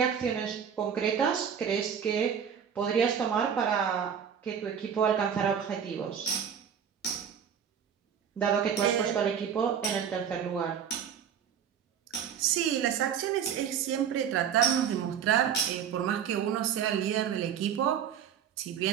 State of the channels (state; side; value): quieter; left; 8.1 dB